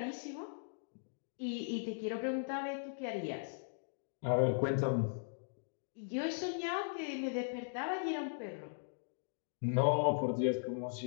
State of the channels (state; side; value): silent; right; digital silence